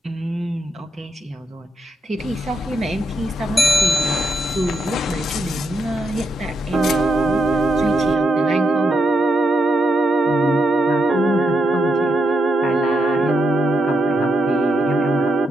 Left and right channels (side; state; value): both; normal; correlation 0.82